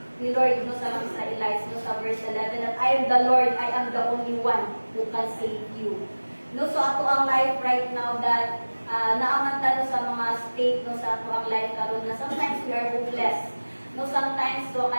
ni Lord no sa mga Israelites no sa verse 11 that I am the Lord, I am the only one who can save you. No so ato ang life right now that naamanta no sa mga state no sa ato ang life karon na sometimes we are hopeless. No sometimes so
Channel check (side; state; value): both; inverted; correlation -1.00